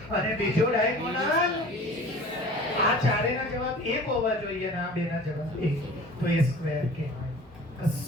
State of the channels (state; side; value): normal; both; correlation 0.43